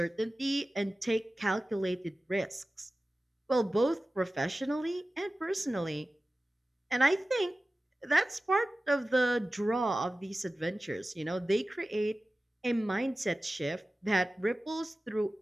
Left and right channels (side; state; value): both; normal; correlation 0.96